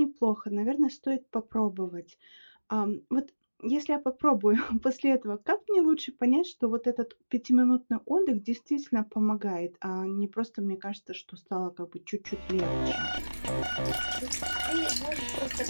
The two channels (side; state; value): both; inverted; correlation -1.00